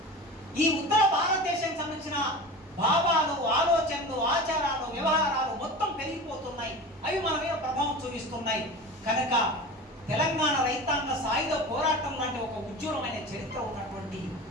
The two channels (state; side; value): normal; both; correlation 0.32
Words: ఈ ఉత్తర భారతదేశానికి సంబంధించిన భావాలు, ఆలోచనలు, ఆచారాలు, వ్యవహారాలు మొత్తం పెరిగిపోతున్నాయి. అవి మన మీద ప్రభావం చూపిస్తున్నాయి. కనుక తెలంగాణ రైతాంగ సాయుధ పోరాటం లాంటి ఒక ఉజ్వలమైన చరిత్ర ఉన్నటువంటి